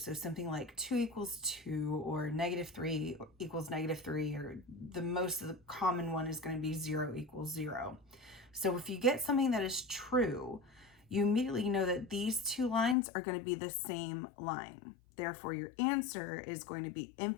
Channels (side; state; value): right; drops out; at 13.0 s